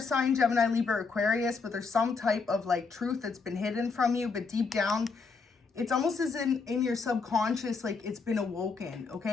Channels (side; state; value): right; quieter; 4.7 dB